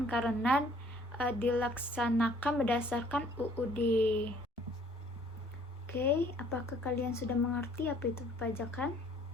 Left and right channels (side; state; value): both; normal; correlation 0.59